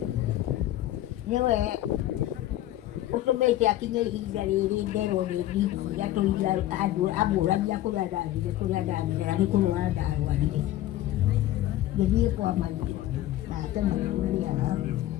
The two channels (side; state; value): right; quieter; 14.1 dB